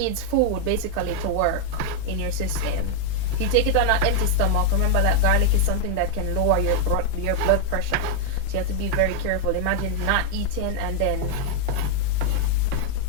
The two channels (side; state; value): both; different; correlation 0.00